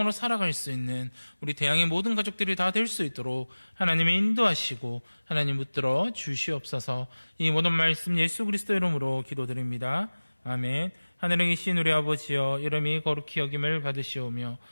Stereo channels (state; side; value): inverted; both; correlation -1.00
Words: 살아갈 수 있는 우리 대양의 모든 가족들이 다 될 수 있도록 하나님의 인도하시고 하나님 붙들어 주시옵소서. 이 모든 말씀 예수 그리스도 이름으로 기도드립니다. 아멘. 하늘에 계신 우리 아버지여, 이름이 거룩히 여김을 받으시오며